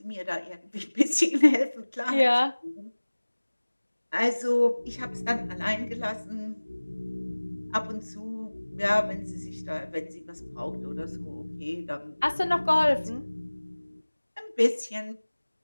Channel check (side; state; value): both; inverted; correlation -1.00